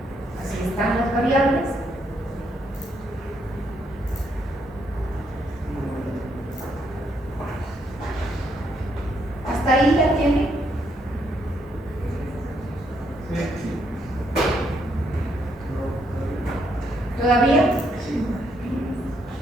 Así están las variables. ¿Hasta ahí la tiene? ¿Todavía?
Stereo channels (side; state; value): both; normal; correlation 0.74